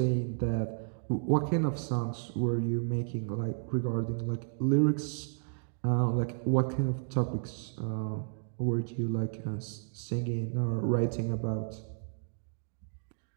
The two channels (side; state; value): left; silent; digital silence